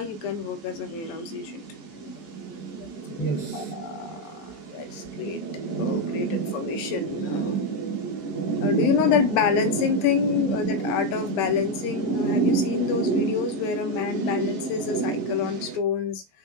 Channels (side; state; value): right; late; 11 ms